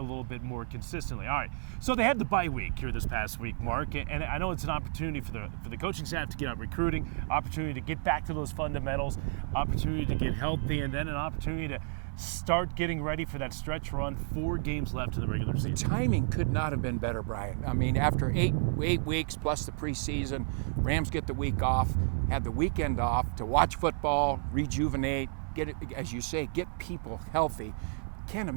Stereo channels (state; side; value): silent; left; digital silence